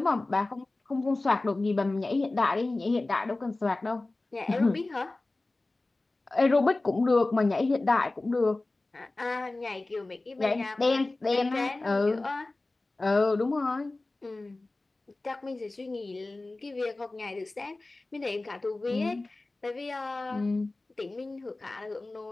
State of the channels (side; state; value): right; quieter; 3.1 dB